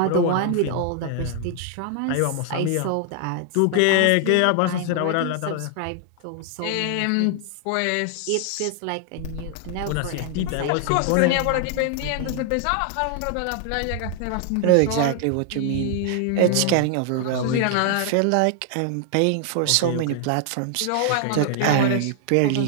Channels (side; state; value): both; different; correlation 0.00